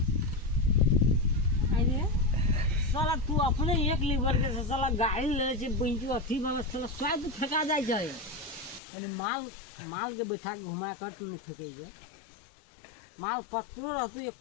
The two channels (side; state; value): right; drops out; at 8.8 s